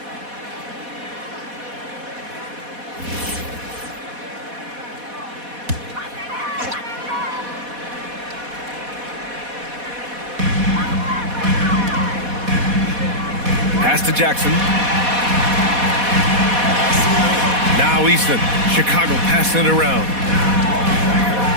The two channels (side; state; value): left; late; 4.1 ms